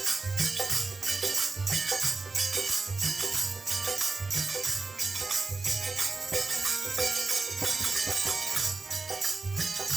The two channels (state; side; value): quieter; left; 3.8 dB